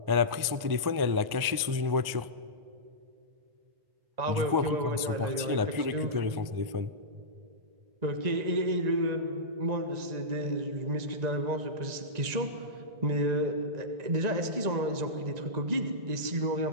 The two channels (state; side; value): late; left; 1.1 ms